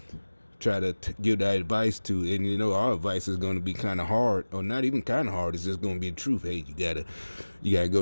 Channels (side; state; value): both; inverted; correlation -1.00